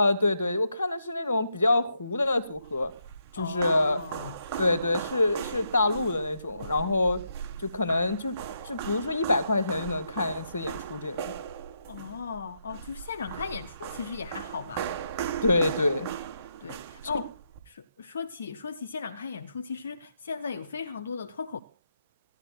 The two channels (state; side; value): inverted; both; correlation -0.80